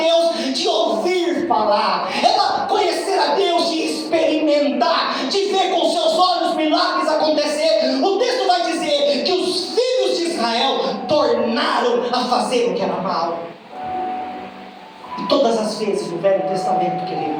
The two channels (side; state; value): both; identical; correlation 1.00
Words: de ouvir falar, era conhecer a Deus de experimentar, de ver com seus olhos milagres acontecer. O texto vai dizer que os filhos de Israel tornaram a fazer o que era mal. E todas as vezes no Velho Testamento,